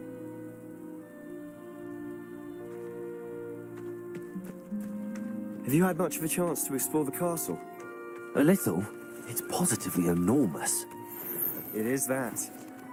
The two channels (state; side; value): identical; both; correlation 1.00